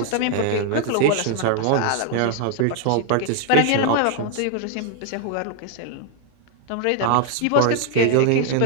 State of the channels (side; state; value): both; different; correlation 0.00